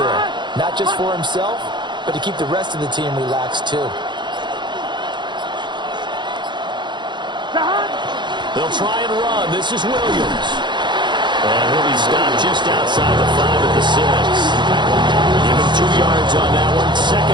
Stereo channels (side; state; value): left; late; 0.22 ms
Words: Not just for himself, but to keep the rest of the team relaxed too. They'll try and run. This is Williams. And he'll be stopped just outside the 5 at the 6. Give him 2 yards on that one. 2nd